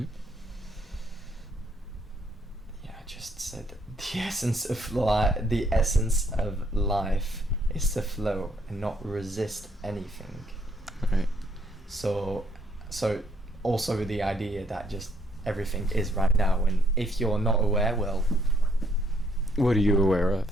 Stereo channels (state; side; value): normal; both; correlation 0.69